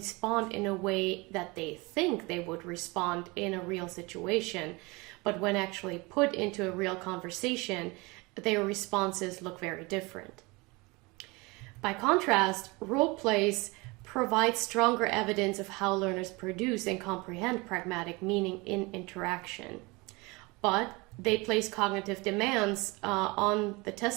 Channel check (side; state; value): left; quieter; 25.4 dB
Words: in a way that they think they would respond in a real situation, but when actually put into a real conversation, their responses look very different. By contrast, role plays provide stronger evidence of how learners produce and comprehend pragmatic meaning in interaction. But they place cognitive demands on the